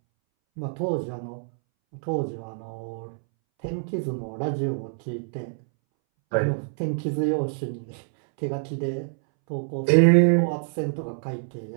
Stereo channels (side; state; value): left; silent; 61 dB below the other